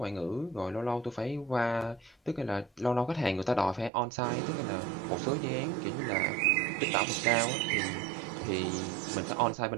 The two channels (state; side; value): drops out; left; at 3.9 s